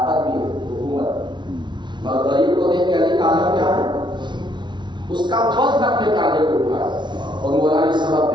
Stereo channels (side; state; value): left; late; 0.22 ms